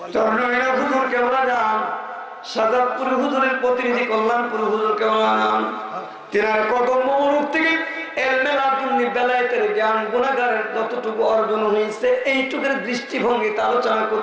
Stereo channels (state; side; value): identical; both; correlation 1.00